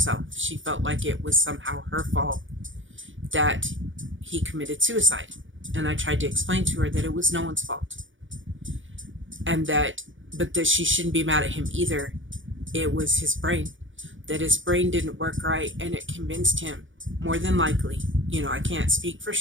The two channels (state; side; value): late; left; 0.56 ms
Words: She felt like it was somehow her fault that he committed suicide. And I tried to explain to her that it was no one's fault. But that she shouldn't be mad at him either. It was his brain. That his brain didn't work right, and it convinced him, more than likely, I can't speak for